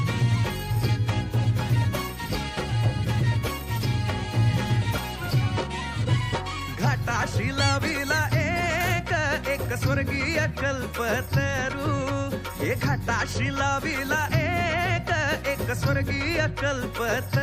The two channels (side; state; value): both; identical; correlation 1.00